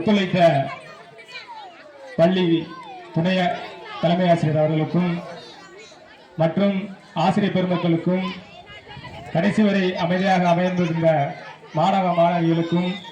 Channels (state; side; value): identical; both; correlation 1.00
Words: பள்ளி துணை தலைமை ஆசிரியர் அவர்களுக்கும் மற்றும் ஆசிரியர் பெருமக்களுக்கும் கடைசி வரை அமைதியாக அமைந்திருந்த மாணவ மாணவிகளுக்கும்